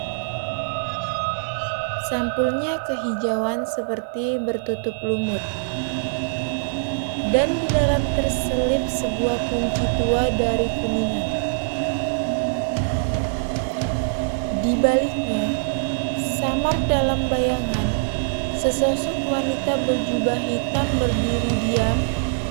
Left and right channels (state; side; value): silent; left; 60 dB below the other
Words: Sampulnya kehijauan seperti bertutup lumut. Dan di dalam terselip sebuah kunci tua dari kuningan. Di baliknya, samar dalam bayangan, sesosok wanita berjubah hitam berdiri diam,